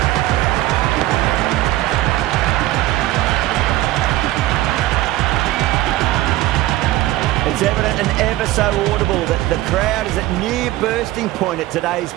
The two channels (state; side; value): quieter; left; 16.3 dB